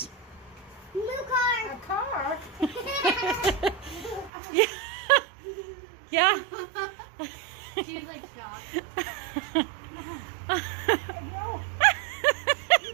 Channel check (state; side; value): drops out; left; at 4.3 s